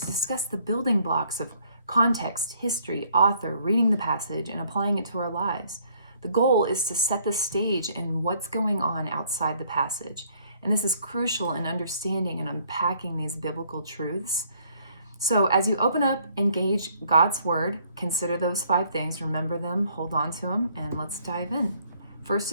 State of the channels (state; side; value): inverted; both; correlation -0.64